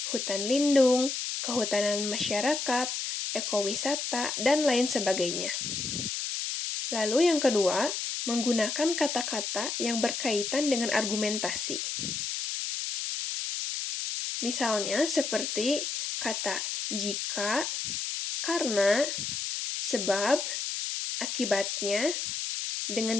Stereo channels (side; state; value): left; noise; hiss, 3 dB below the sound